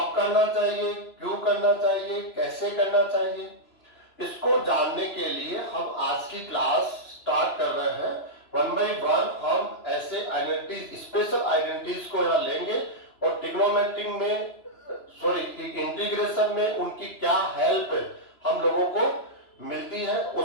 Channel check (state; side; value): late; right; 3.0 ms